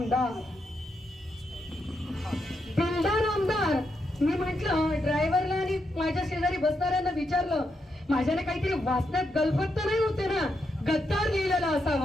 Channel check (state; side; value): normal; both; correlation 0.82